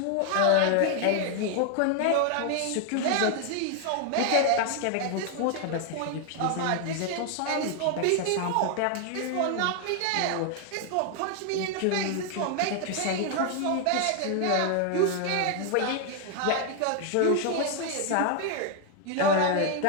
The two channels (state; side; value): different; both; correlation 0.00